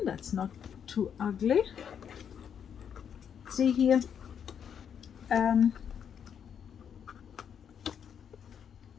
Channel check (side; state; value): right; quieter; 8.0 dB